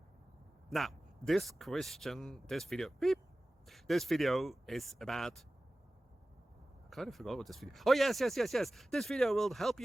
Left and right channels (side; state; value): both; normal; correlation 0.96